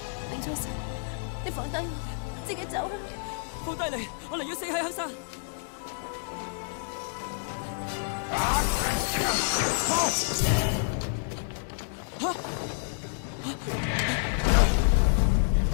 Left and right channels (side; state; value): right; silent; digital silence